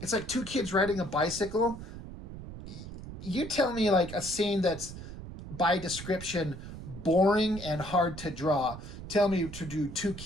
it's like two kids riding a bicycle. You tell me like a scene that's by description boring and hard to draw. Tell me to do two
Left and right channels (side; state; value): right; noise; rumble, 11 dB below the sound